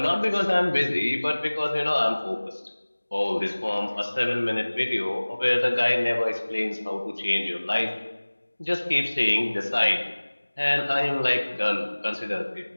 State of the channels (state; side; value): inverted; both; correlation -1.00